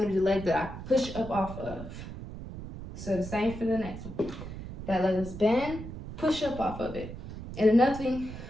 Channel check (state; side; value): noise; right; rumble, 10 dB below the sound